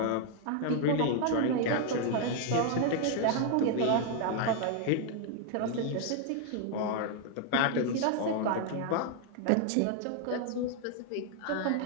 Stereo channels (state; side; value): different; both; correlation 0.00